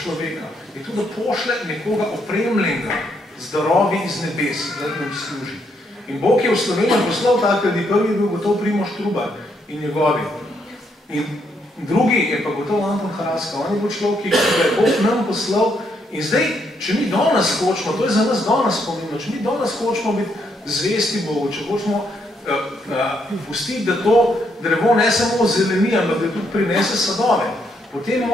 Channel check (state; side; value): normal; both; correlation 0.75